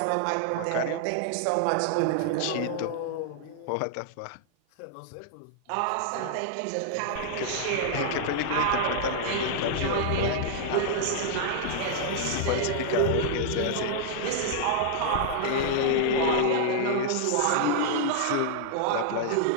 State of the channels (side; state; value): both; different; correlation -0.01